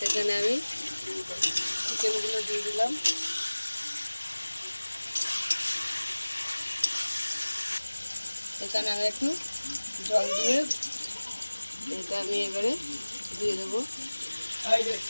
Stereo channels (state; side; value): inverted; both; correlation -1.00